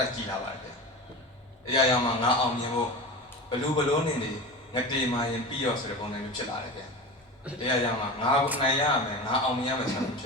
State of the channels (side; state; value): both; normal; correlation 0.29